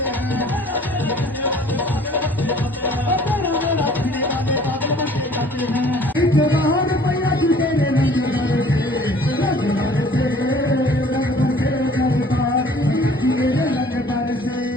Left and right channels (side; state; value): both; normal; correlation 0.52